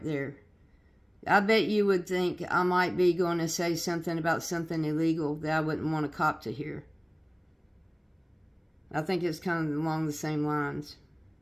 there." I bet you would think I might be going to say something about something illegal that I wouldn't want a cop to hear. I think it's kind of along the same lines.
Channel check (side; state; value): both; identical; correlation 1.00